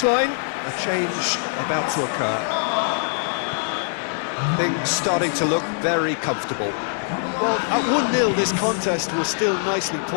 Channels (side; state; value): right; silent; digital silence